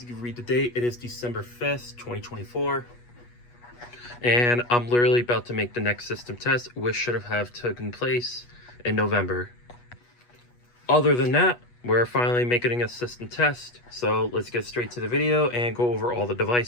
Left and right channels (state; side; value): late; right; 8.3 ms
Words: you can read the date, it is December 5th, 2024. And I'm literally about to make the next system test, which should have taken place in November. Other than that, we're finally making a system test. So let's get straight to the video and go over all the